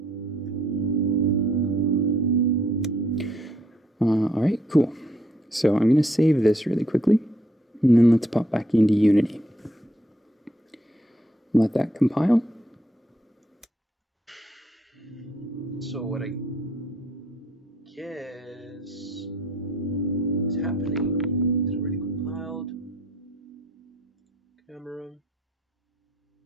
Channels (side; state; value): both; normal; correlation 0.69